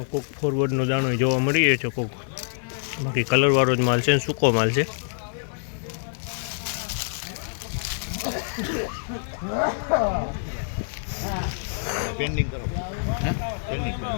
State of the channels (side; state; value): right; silent; digital silence